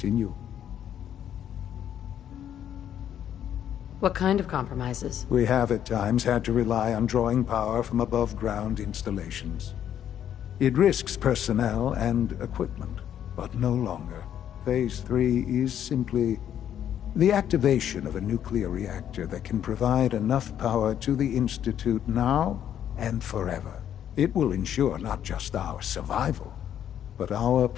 What kind of compromises? We have at times had to rely on drawing power from above-ground installations. It risks personnel and equipment, but no longer. Phase 3 is simply the activation of a nuclear reactor that can provide enough power to the Institute now and forever. It will ensure not just our survival, but our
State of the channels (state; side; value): quieter; right; 10.0 dB